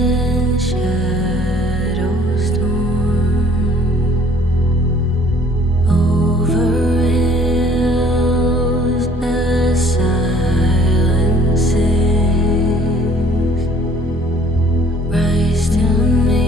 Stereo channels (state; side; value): normal; both; correlation 0.57